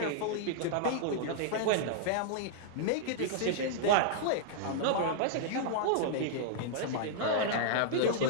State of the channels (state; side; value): different; both; correlation -0.01